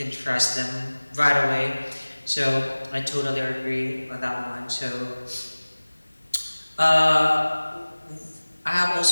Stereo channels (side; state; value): both; inverted; correlation -1.00